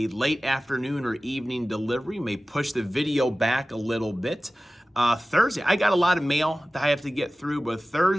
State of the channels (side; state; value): both; normal; correlation 0.96